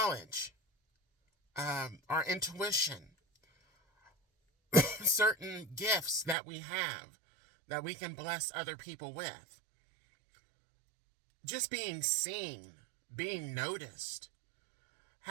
our intuition, certain gifts that we have that we can bless other people with. Just being seen, being noticed,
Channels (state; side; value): drops out; left; at 6.4 s